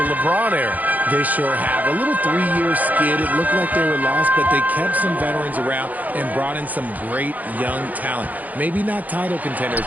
LeBron era. They sure have. A little 3-year skid. It looked like they were lost, but they kept some veterans around and brought in some great young talent. Maybe not title contenders,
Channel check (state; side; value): late; left; 0.080 ms